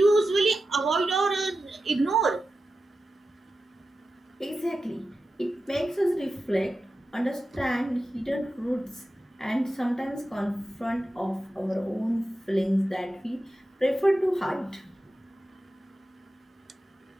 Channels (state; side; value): normal; both; correlation 0.92